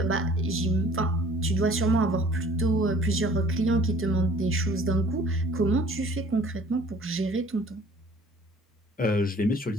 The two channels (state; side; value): normal; both; correlation 0.52